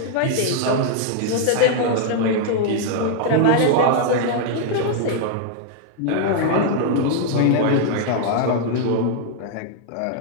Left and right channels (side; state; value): both; different; correlation 0.00